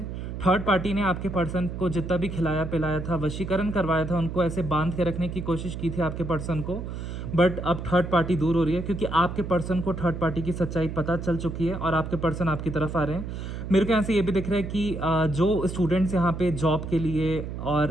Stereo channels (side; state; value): right; noise; hum, 7 dB below the sound